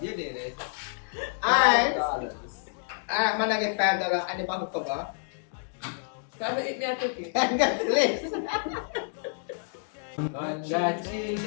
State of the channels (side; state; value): right; silent; digital silence